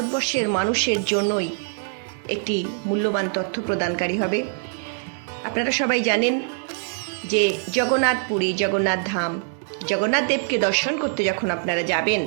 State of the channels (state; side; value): silent; left; 63 dB below the other